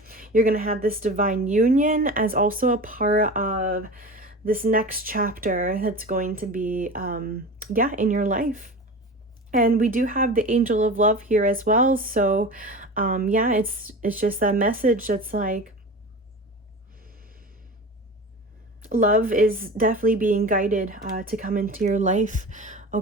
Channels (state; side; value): normal; both; correlation 0.32